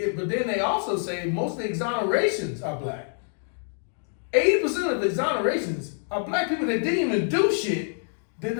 but then they also say most of the exonerations are black. 80% of the exonerations are black people that didn't even do shit, that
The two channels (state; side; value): silent; right; 61 dB below the other